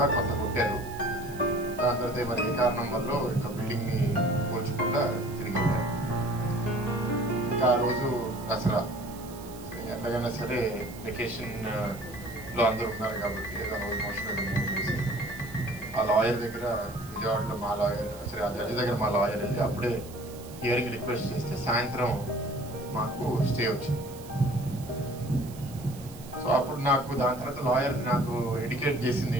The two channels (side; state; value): right; noise; hiss, 19 dB below the sound